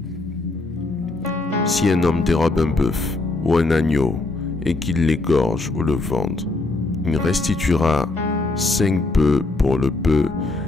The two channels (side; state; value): right; quieter; 3.2 dB